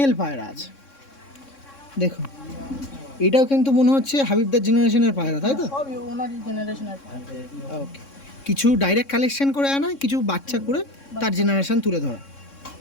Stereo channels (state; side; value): late; right; 3.6 ms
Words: পায়রা আছে। দেখুন এটাও কিন্তু মনে হচ্ছে হাবিবদার জেনারেশনের পায়রা, তাই তো? সবই ওনারই জেনারেশনের। ওকে, কিছু ডাইরেক্ট কালেকশন করে আনা, কিছু বাচ্চা করে তার জেনারেশন তুলে ধরা।